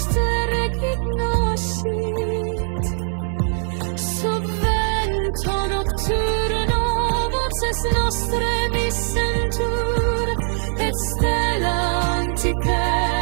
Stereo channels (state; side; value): silent; left; digital silence